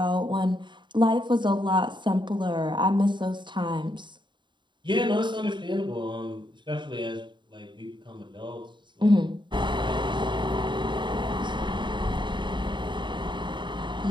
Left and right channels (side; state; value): left; late; 0.23 ms